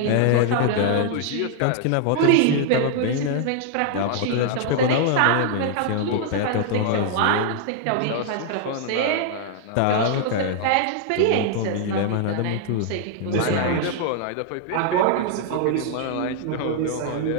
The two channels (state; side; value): different; both; correlation 0.00